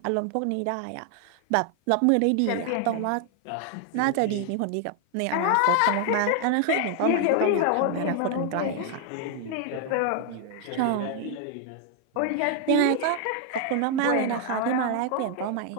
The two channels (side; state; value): both; different; correlation 0.00